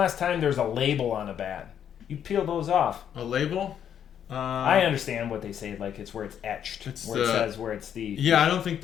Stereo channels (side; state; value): right; quieter; 9.1 dB